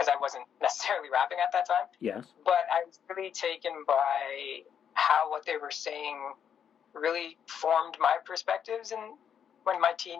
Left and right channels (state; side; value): quieter; right; 8.2 dB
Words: I wasn't necessarily rapping at that time. Yes. But I was really taken by how what they were saying really formed my perspectives in my